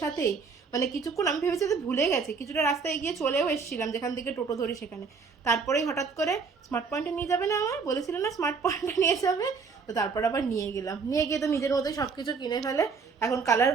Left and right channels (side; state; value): left; quieter; 5.1 dB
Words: সাথেই মানে কিছুক্ষণ আমি ভেবেছি যে ভুলে গেছে, কিছুটা রাস্তায় গিয়ে চলেও এসেছিলাম যেখান থেকে টোটো ধরি সেখানে। তারপরেই হঠাৎ করে স্মার্ট পয়েন্টে নিয়ে যাবে না, আমার বলেছিল না স্মার্ট পয়েন্টে নিয়ে যাবে, তো তারপর আবার নিয়ে গেলাম। নিয়ে গিয়ে তো নিজের মতোই সব কিছু কিনে ফেলে, এখন কালার